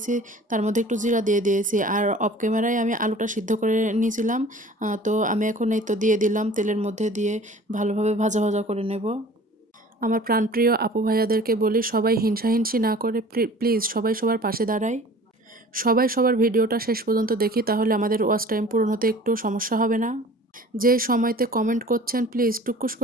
তার মধ্যে একটু জিরা দিয়ে দিয়েছি, আর অফ ক্যামেরায় আমি আলুটা সিদ্ধ করে নিয়েছিলাম। তো আমি এখন এই তো দিয়ে দিলাম, তেলের মধ্যে দিয়ে ভালোভাবে ভাজা ভাজা করে নেব। আমার প্রাণপ্রিয় আপু ভাইয়াদেরকে বলি, সবাই হিংসাহিংসি না করে প্লিজ সবাই সবার পাশে দাঁড়ায়। সবাই সবার ভিডিওটা শেষ পর্যন্ত দেখি, তাহলে আমাদের ওয়াচ টাইম পূরণ হতে একটু সমস্যা হবে না। যে সময়তে কমেন্ট করছেন প্লিজ টুকুস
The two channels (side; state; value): both; normal; correlation 0.46